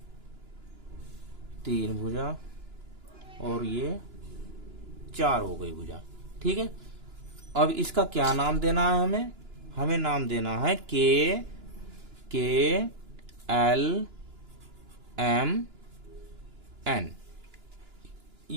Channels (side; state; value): left; late; 2.9 ms